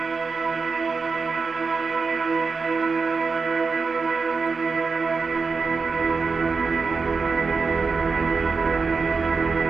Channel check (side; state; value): left; quieter; 4.8 dB